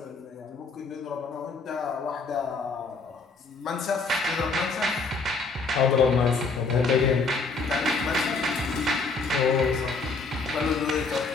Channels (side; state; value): right; quieter; 4.1 dB